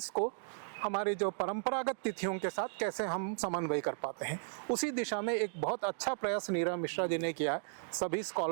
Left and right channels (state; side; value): silent; left; digital silence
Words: को हमारी जो परंपरागत तिथियों के साथ कैसे हम समन्वय कर पाते हैं। उसी दिशा में एक बहुत अच्छा प्रयास नीरा मिश्रा जी ने किया है, सभी